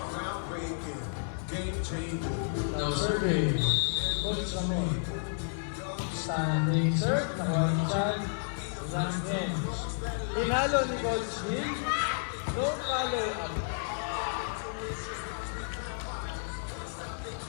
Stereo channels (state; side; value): silent; right; digital silence